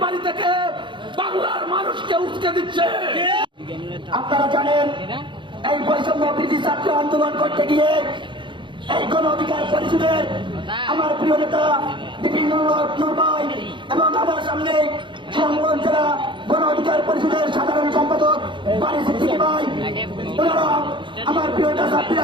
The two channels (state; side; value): late; left; 0.23 ms